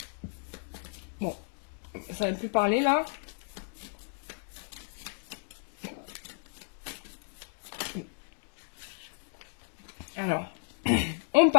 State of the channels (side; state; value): right; silent; digital silence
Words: Bon, ça ne va plus parler là. Alors, on